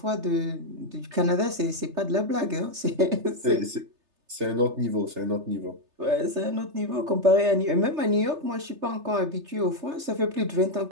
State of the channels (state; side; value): late; left; 3.3 ms